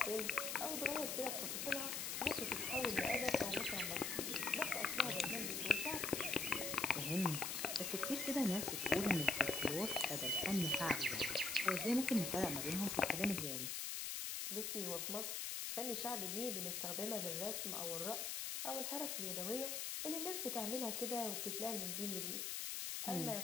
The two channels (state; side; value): noise; left; hiss, 2 dB below the sound